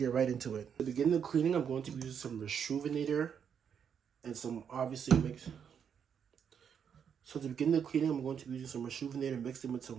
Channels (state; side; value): quieter; left; 7.7 dB